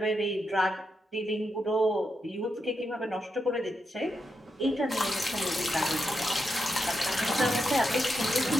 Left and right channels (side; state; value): both; normal; correlation 0.85